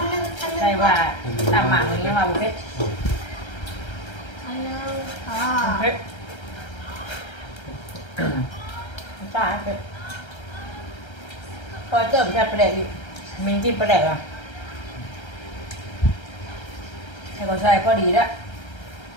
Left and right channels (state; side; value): late; right; 1.3 ms